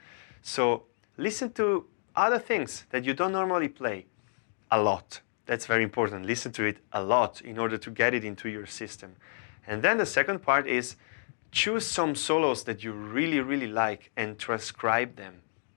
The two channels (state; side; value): silent; right; digital silence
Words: So listen to other things that you don't normally play a lot. That's very important. Listen to it a lot in order to get it into your system. And then the second part is choose some solos that you really, really like and transcribe them.